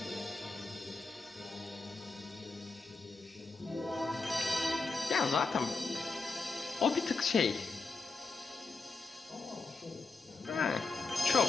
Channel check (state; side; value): quieter; right; 3.9 dB